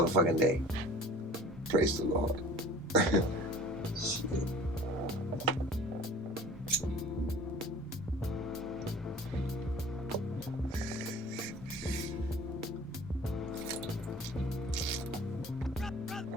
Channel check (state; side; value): normal; both; correlation 0.45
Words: day. Praise the Lord.